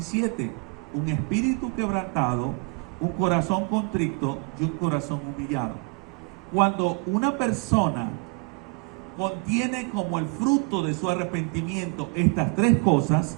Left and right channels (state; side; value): quieter; left; 34.3 dB